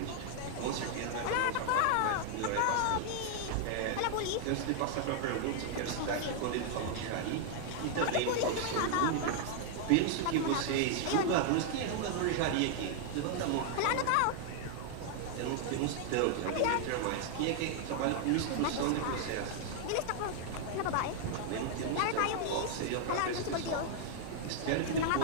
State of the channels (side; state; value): both; different; correlation 0.00